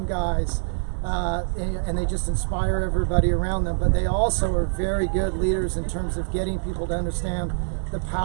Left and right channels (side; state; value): left; silent; digital silence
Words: guys, and they just inspire everybody around them. But they also are very good leaders in terms of getting people to understand the